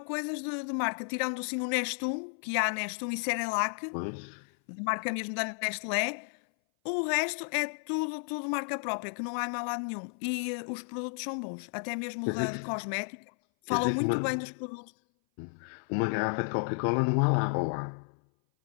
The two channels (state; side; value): silent; right; 56 dB below the other